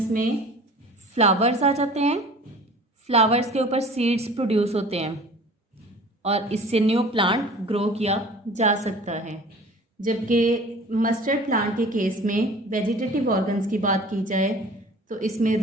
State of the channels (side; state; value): both; normal; correlation 0.44